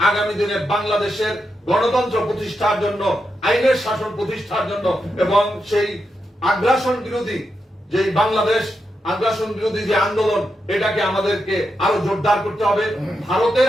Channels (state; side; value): normal; both; correlation 0.86